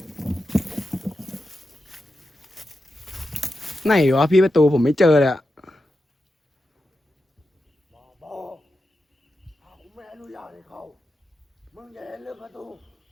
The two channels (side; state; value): both; normal; correlation 0.89